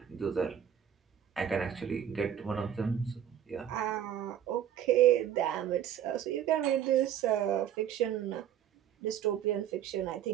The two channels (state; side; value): quieter; left; 9.9 dB